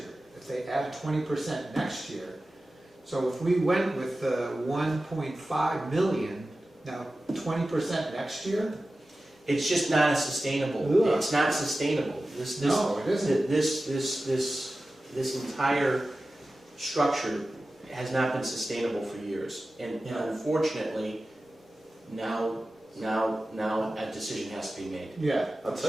If they add 20% next year, so if we went with the 1.5 million, now 20% next year? It's just not a sustainable, Ugh. it's not sustainable. No, it isn't. This entire structure has not been sustainable for years. And unfortunately, now a decision has to be made. Yeah. I'll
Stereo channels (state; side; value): normal; both; correlation 0.95